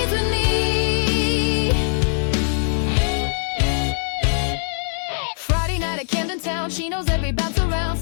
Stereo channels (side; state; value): right; silent; digital silence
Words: with me. Friday night at Camden Town, she knows every bounce around,